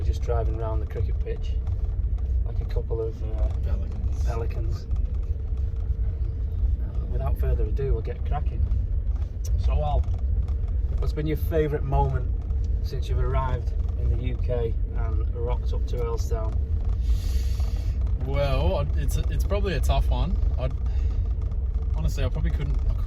just driving around the cricket pitch like a couple of pelicans. Without further ado, we'll get cracking. So, Al, what's been your favourite moment since you've arrived in the UK and rocked up to Earlstown? Well, it's probably a tough one. Honestly, I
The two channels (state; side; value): identical; both; correlation 1.00